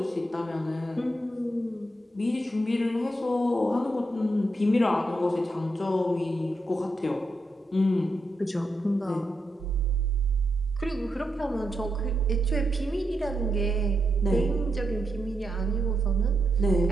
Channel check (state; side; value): normal; both; correlation 0.83